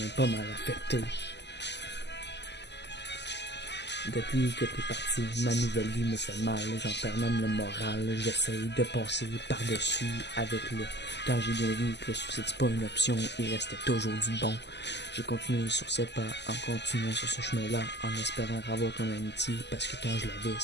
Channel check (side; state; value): right; late; 0.50 ms